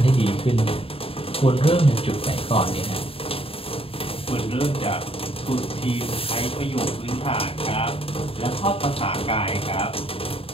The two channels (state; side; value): late; right; 0.27 ms